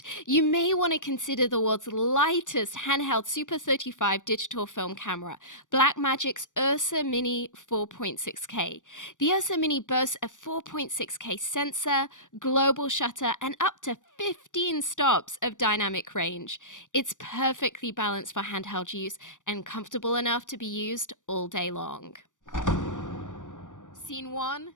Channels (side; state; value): right; late; 0.87 ms